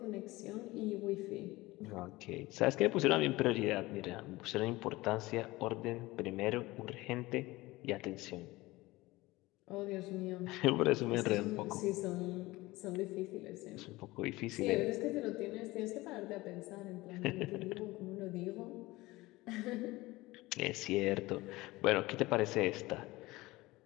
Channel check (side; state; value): right; quieter; 20.0 dB